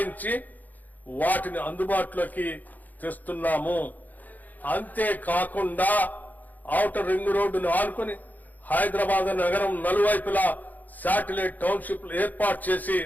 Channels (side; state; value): right; late; 0.082 ms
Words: వాటిని అందుబాటులోకి తెస్తున్నాము. అంతేకాకుండా ఔటర్ రింగ్ రోడ్డును ఆనుకుని హైదరాబాద్ నగరం నలువైపులా శాటిలైట్ టౌన్షిప్లు ఏర్పాటు చేసి